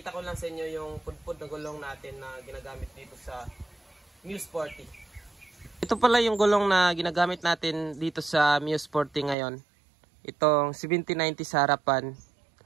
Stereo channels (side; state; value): left; drops out; at 9.3 s